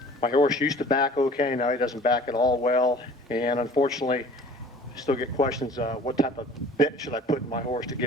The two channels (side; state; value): both; normal; correlation 0.47